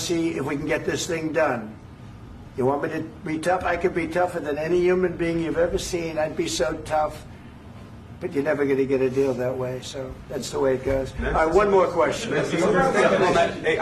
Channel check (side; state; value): both; identical; correlation 1.00